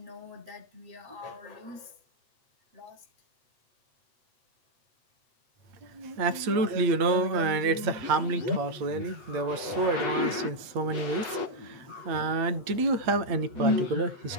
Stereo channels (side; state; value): left; late; 8.7 ms